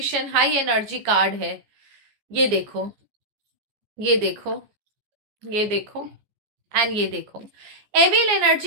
हाई एनर्जी कार्ड है। ये देखो, ये देखो, ये देखो, एंड ये देखो। एविल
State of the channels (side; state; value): left; late; 14 ms